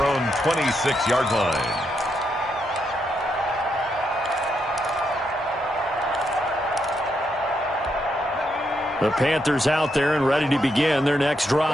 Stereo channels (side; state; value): right; noise; hum, 27 dB below the sound